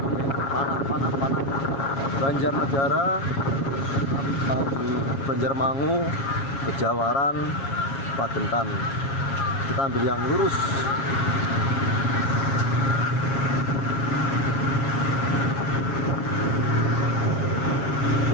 Panah. Banjarnegara, Banjarmangu, Kejawaran, Pagentan. Kita ambil yang lurus.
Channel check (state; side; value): late; right; 7.3 ms